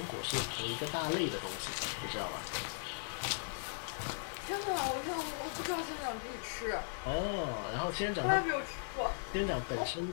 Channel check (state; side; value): silent; right; digital silence